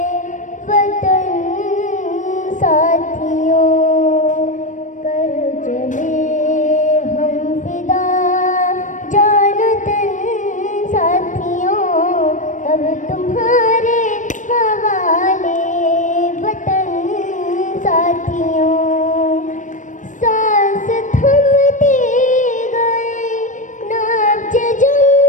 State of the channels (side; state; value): right; late; 0.37 ms